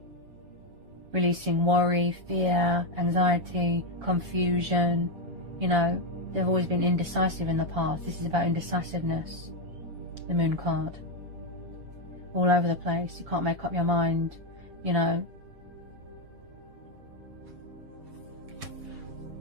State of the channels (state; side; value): late; left; 7.1 ms